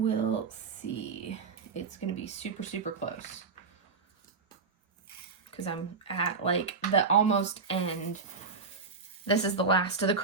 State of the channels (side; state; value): left; quieter; 4.8 dB